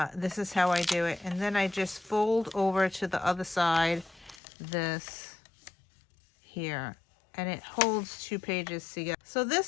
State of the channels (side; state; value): right; drops out; at 4.4 s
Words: this is how I do it. And then I just fold over to the other side, this here. And it holds 2 pages together. So